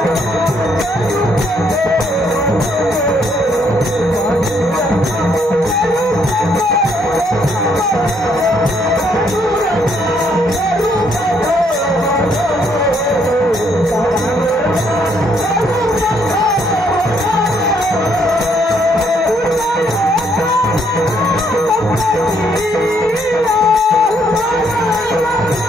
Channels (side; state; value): both; normal; correlation 0.70